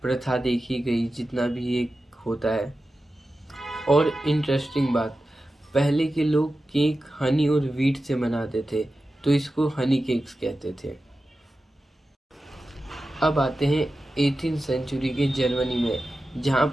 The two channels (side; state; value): both; normal; correlation 0.93